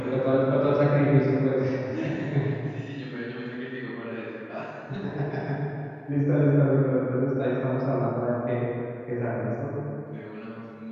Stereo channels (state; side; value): identical; both; correlation 1.00